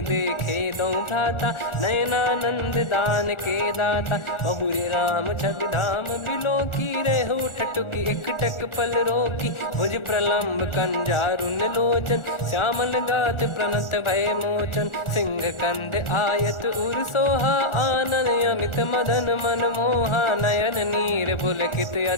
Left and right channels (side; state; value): right; late; 1.4 ms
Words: देखे दो भ्राता। नयनानंद दान के दाता, बहुरी राम छग धाम बिलो की। रेहु ठटुकी एकटक पल रोकी, भुज प्रलम्ब कंजारुन लोचन। श्यामल गात प्रणत भय मोचन, सिंह कंध आयत उर सोहा। आनन अमित मदन मन मोहा, नयन नीर पुलकित